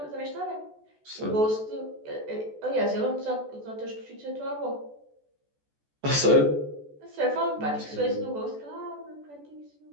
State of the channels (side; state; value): left; late; 14 ms